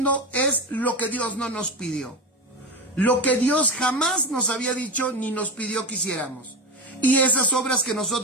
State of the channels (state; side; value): normal; both; correlation 0.20